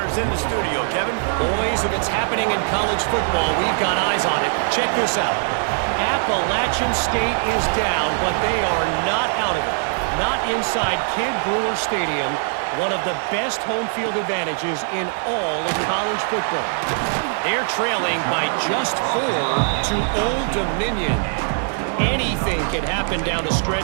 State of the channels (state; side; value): silent; left; 59 dB below the other